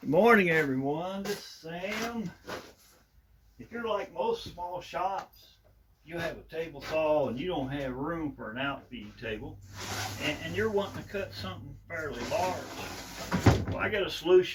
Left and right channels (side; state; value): both; identical; correlation 1.00